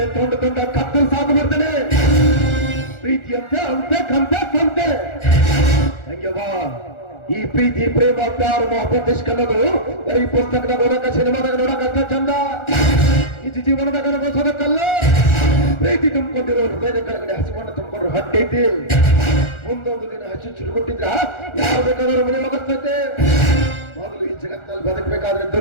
ತೊಂಡ ಕತ್ತಲು ಸಾಕು ಬರ್ತೇನೆ. ಪ್ರೀತಿ ಅಂತೆ ಹಂಗೆ ಬಾ. ಈ ಪ್ರೀತಿ ಪ್ರೇಮ ಪ್ಯಾರ ಮೊಹಬ್ಬತ್ ಇಷ್ಕ್ ಅನ್ನೋದು ಬರೀ ಪುಸ್ತಕದಾಗ ಓದಕ ಸಿನಿಮಾದಾಗ ನೋಡಕ ಚಂದ, ನಿಜ ಜೀವನದಾಗ ಅನುಭವಿಸೋದಕ್ಕಲ್ಲ. ಪ್ರೀತಿ ತುಂಬಿಕೊಂಡಿರೋ ಹೃದಯದ ಕೆಳಗಡೆ ಹಸಿವನ್ನು ತುಂಬಿಕೊಂಡ್ರು ಹಟ್ಟೈತಿ. ಮುಂದೊಂದು ದಿನ ಹಚ್ಚು ಚುರುಗುಟ್ಟಿದ್ರ ಯಾವ ಬೇಕಾದ್ರೂ ಮನೆ ಹೋಗಸ್ತೈತೆ. ಮೊದಲು ಈ ಜಗತ್ತಿನಲ್ಲಿ ಬದುಕಬೇಕಾದ್ರೆ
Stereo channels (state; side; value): late; right; 1.4 ms